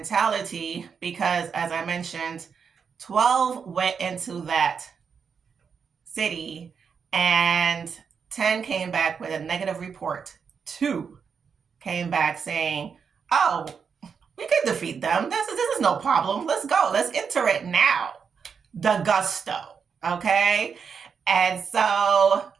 because as I mentioned, 12 went into that city and 10 came back with a negative report. Two came back saying, oh, we can defeat them. This is no problem. Let's go. Let's enter it now. The gusto. Okay. And so,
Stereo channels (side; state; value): left; quieter; 6.3 dB